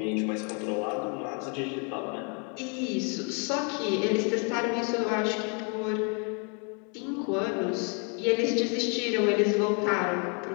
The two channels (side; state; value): right; quieter; 36.3 dB